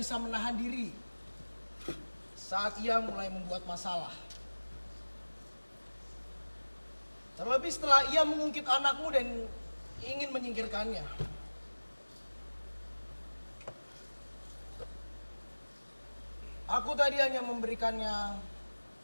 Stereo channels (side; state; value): both; inverted; correlation -1.00